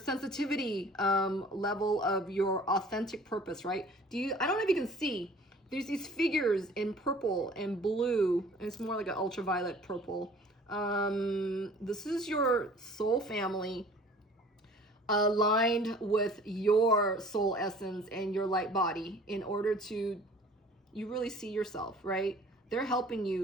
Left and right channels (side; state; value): both; normal; correlation 0.50